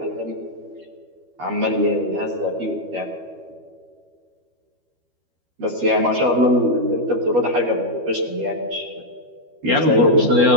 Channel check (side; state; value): left; late; 12 ms